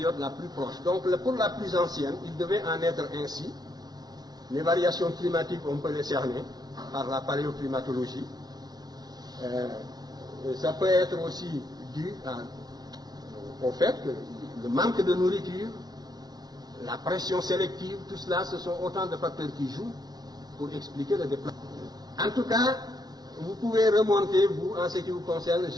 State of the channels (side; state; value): left; late; 0.19 ms